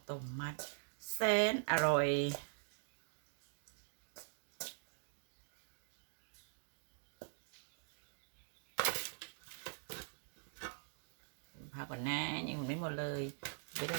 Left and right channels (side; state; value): left; silent; digital silence